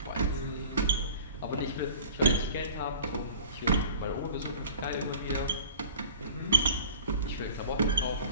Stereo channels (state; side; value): inverted; both; correlation -0.44